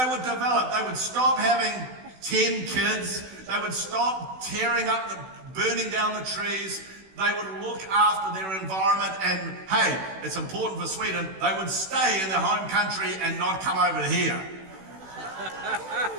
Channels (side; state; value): left; late; 16 ms